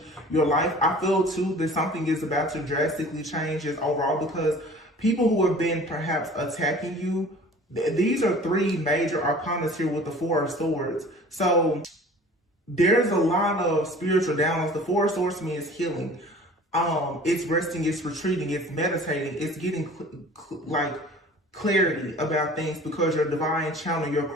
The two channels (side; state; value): both; normal; correlation 0.46